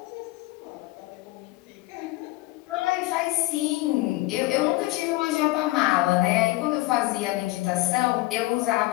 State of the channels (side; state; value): right; quieter; 19.8 dB